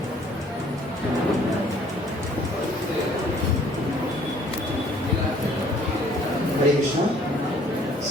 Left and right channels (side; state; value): both; normal; correlation 0.59